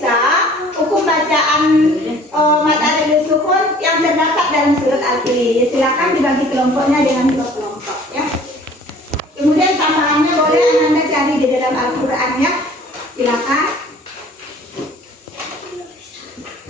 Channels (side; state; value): both; normal; correlation 0.51